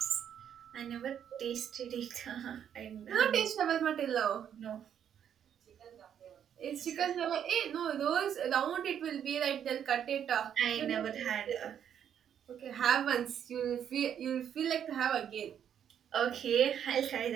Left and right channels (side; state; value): left; quieter; 9.0 dB